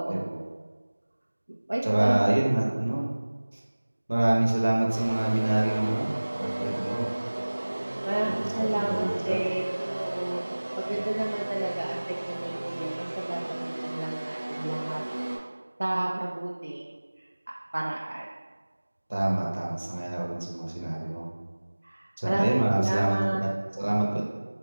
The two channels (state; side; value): inverted; both; correlation -1.00